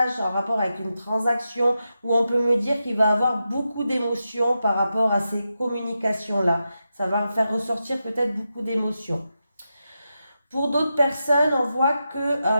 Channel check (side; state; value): both; inverted; correlation -0.89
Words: en rapport avec une transaction, où on peut me dire qu'il va avoir beaucoup d'émotions par rapport à ces communications-là. Ça va faire ressortir peut-être beaucoup d'émotions. Pour d'autres personnes, on voit que.